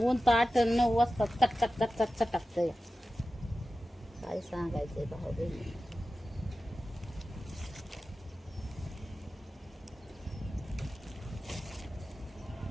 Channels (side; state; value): both; normal; correlation 0.94